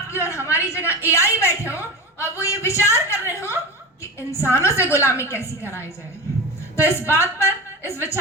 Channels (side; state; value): both; normal; correlation 0.25